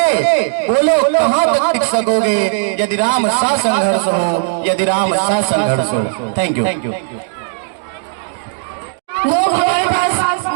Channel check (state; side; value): silent; left; digital silence